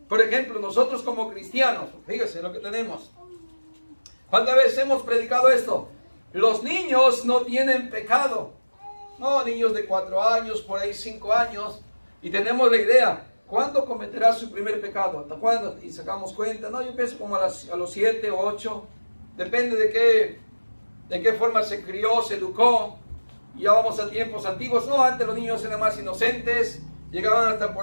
Por ejemplo, nosotros como cristianos, fíjese lo que tenemos. ¿Cuántas veces hemos predicado esto? Los niños no tienen pecado. No, niños de 4 años, por ahí 5 años. Y tenemos la idea, ¿cuándo cometerá su primer pecado? ¿Hasta cuándo? Y sacamos cuenta. No, yo pienso como a los 7 o 8. Depende de qué forma se crió, se educó. Ya vamos a tiempos antiguos. No, antes los niños eran más inocentes. Llegaban hasta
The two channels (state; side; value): inverted; both; correlation -1.00